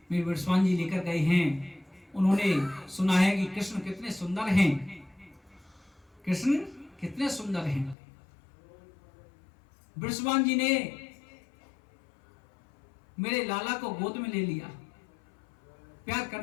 मेरे विश्वान जी लेकर गए हैं, उन्होंने सुना है कि कृष्ण कितने सुंदर हैं, कृष्ण कितने सुंदर हैं। विश्वान जी ने मेरे लाला को गोद में ले लिया प्यार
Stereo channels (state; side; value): drops out; right; at 8.0 s